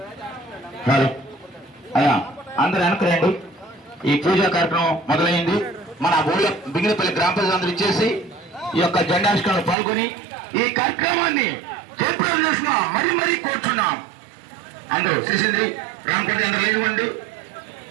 hello అయ్యా, అందరు వెనక్కి రండి. ఈ పూజా కార్యక్రమం మొదలైంది. మన ఊళ్ళో బింగినపల్లి గ్రామ ప్రజలందరూ ఇచ్చేసి ఈ యొక్క జెండావిష్కరణలో పాల్గొని ఈ కార్యక్రమాన్ని జయప్రదం చేసిన మరీ మరీ కోరుచున్నాం. అందరూ శ్రీసింద్రి రామకోటి అందరూ లేనివ్వండి,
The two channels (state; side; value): drops out; left; at 9.8 s